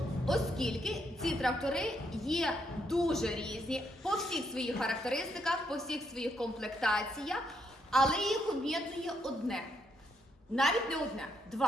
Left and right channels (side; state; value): both; normal; correlation 0.75